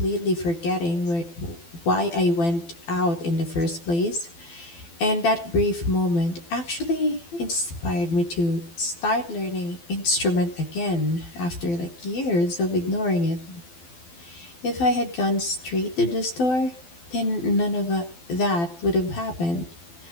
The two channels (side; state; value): right; late; 12 ms